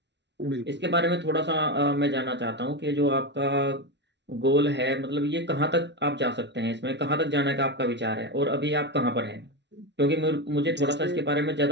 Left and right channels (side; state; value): left; late; 0.51 ms